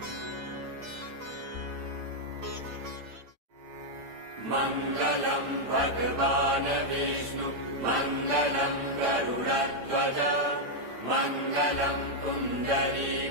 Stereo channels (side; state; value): left; late; 8.8 ms